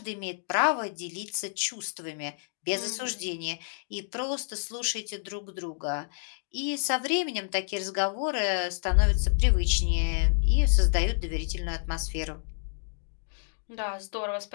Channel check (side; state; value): right; silent; digital silence